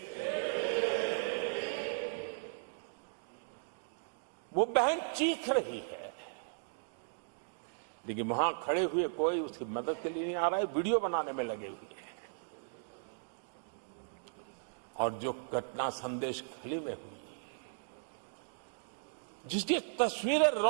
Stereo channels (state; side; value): silent; left; digital silence